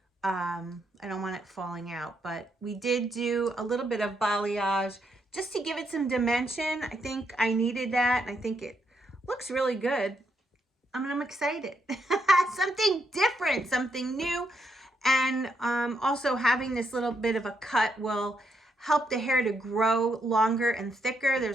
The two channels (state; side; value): normal; both; correlation 0.78